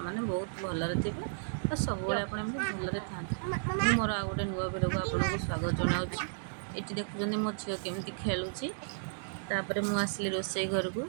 मैंने बहुत भलरे थे और सब आपण भलरे था मुझे मोर आ गए नुआ भिड को आपन को स्वागत जनावि ये देखुं मो झील केमी खेलुची मुझे रोसई घर को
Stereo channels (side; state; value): left; silent; digital silence